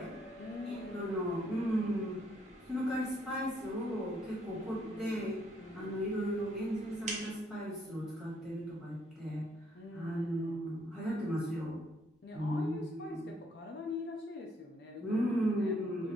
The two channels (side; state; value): both; normal; correlation 0.70